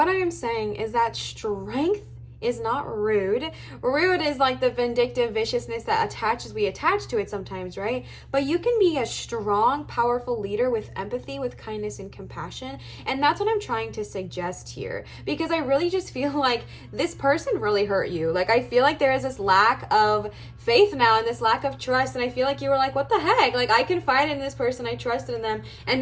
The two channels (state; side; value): identical; both; correlation 1.00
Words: I am saying is that strength is not rude. Rude is like the vindictive viciousness that we attach to it sometimes, right? But you can be a strong, powerful leader with empathy, with kindness and compassion. And that's what I'm trying to suggest here, because I really just feel like this person really hurt you. Like, I feel like there is this lack of faith now and this lack of trust, and I feel like you were like, what the heck? Like, I confided in this person, I trusted in them, and